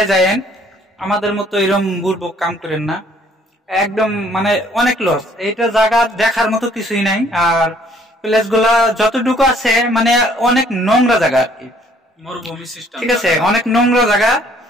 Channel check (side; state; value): both; normal; correlation 0.61